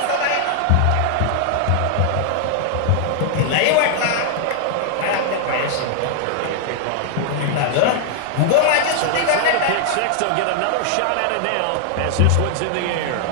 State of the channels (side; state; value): both; different; correlation 0.00